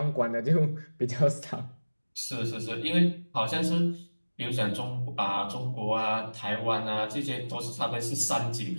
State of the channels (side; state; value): both; inverted; correlation -1.00